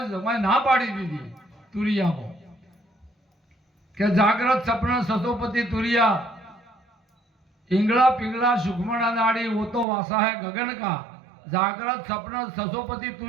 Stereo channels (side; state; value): left; drops out; at 9.9 s